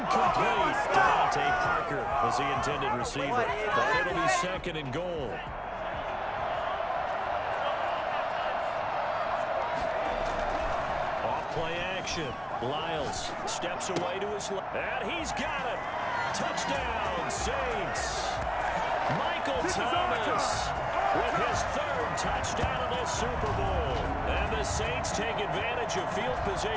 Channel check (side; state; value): both; identical; correlation 1.00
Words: Devontae Parker was the intended receiver. But it'll be 2nd and goal. Off play action. Lyles steps away to his left. And he's got it. Touchdown, Saints. Michael Thomas with his 3rd touchdown of this Super Bowl. And the Saints take advantage of field